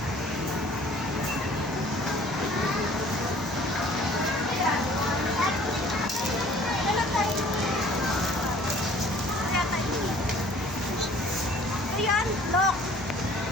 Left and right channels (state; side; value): normal; both; correlation 0.53